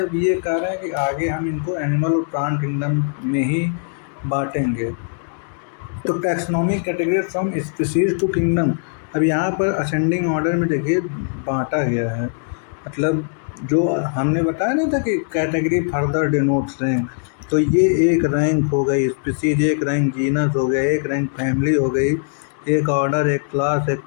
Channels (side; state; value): right; silent; digital silence